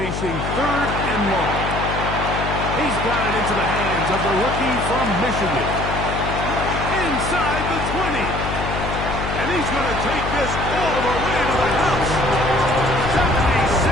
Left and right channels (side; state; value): left; noise; hum, 5 dB below the sound